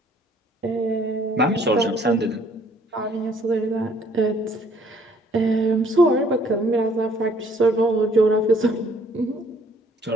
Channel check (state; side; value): normal; both; correlation 0.61